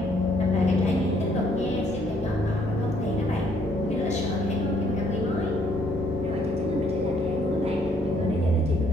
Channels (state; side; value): normal; both; correlation 0.67